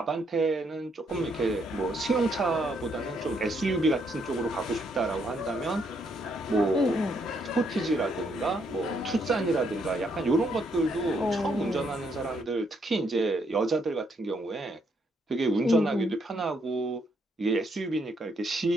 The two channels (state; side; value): normal; both; correlation 0.74